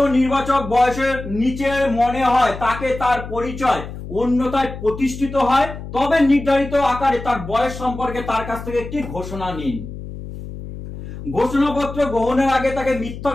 নির্বাচক বয়সের নিচে মনে হয় তাকে তার পরিচয় অন্যথায় প্রতিষ্ঠিত হয়, তবে নির্ধারিত আকারে তার বয়স সম্পর্কে তার কাছ থেকে একটি ঘোষণা নিন। ঘোষণাপত্র গ্রহণের আগে তাকে মিথ্যা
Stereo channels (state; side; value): noise; left; hum, 11 dB below the sound